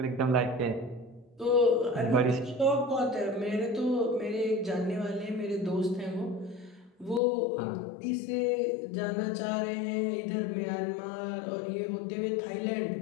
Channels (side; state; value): right; drops out; at 7.2 s